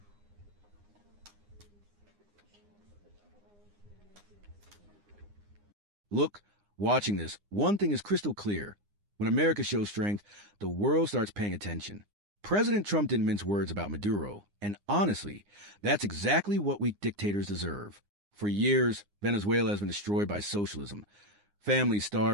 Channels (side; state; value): left; late; 9.8 ms